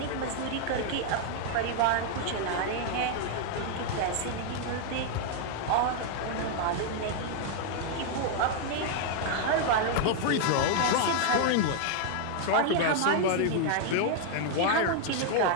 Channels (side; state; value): both; different; correlation 0.00